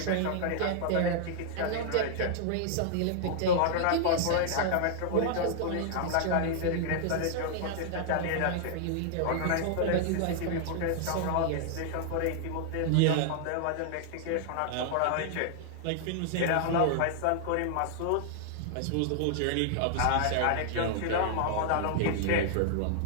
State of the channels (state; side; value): different; both; correlation -0.01